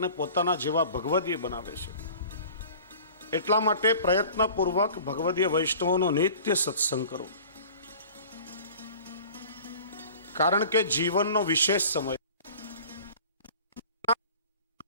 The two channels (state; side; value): inverted; both; correlation -0.44